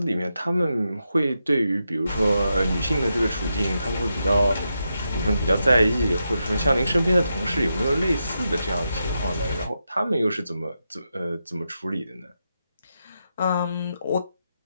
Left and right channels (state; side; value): inverted; both; correlation -0.86